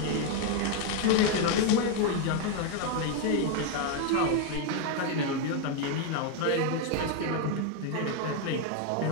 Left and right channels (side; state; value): both; different; correlation 0.01